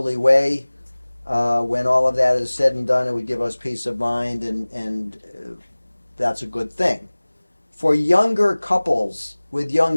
way. When all of that is said and done, it would give us peace of mind, and that's a good thing. For younger couples with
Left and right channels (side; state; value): both; inverted; correlation -1.00